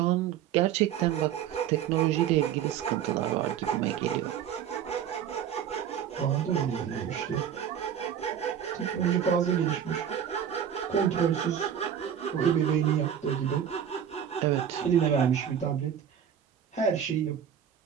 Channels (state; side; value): quieter; left; 9.1 dB